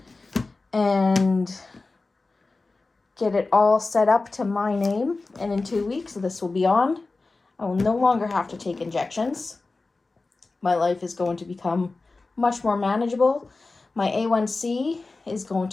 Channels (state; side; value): quieter; right; 3.6 dB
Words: and get it all set up to my name. And in 2 weeks, this will be on. I will no longer have to take injections. My life is going to become much more manageable. My A1C is going